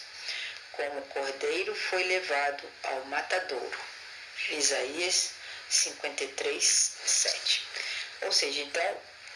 como o cordeiro foi levado ao matadouro. Isaías 53:7. Ou seja, então,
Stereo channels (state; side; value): identical; both; correlation 1.00